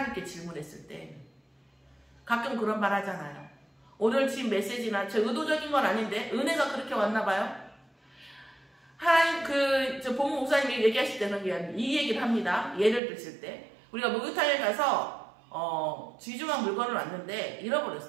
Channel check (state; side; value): drops out; left; at 13.0 s